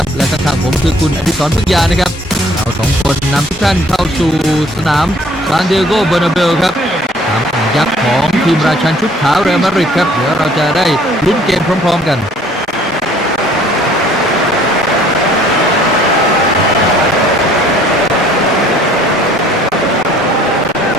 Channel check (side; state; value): both; normal; correlation 0.57